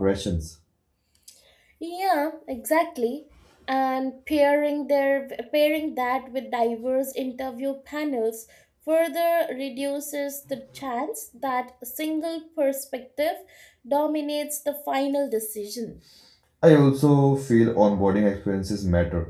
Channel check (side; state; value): both; identical; correlation 1.00